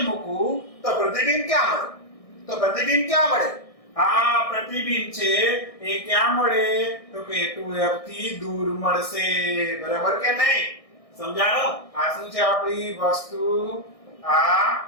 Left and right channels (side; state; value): right; late; 1.6 ms